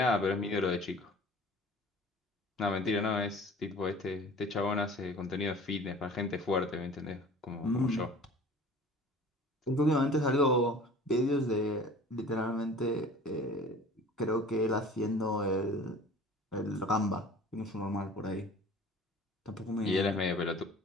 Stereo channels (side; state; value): both; normal; correlation 0.45